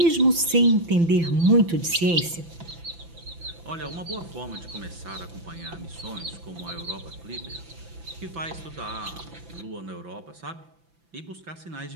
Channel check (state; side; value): late; left; 5.9 ms